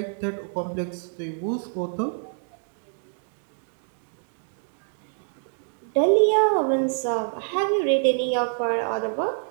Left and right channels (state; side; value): silent; left; digital silence